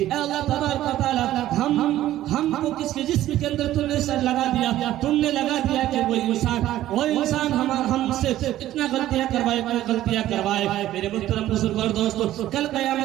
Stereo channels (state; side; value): quieter; left; 13.8 dB